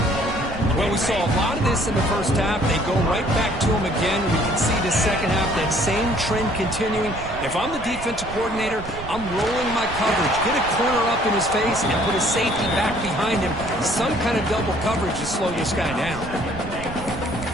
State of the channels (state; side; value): noise; right; rumble, 12 dB below the sound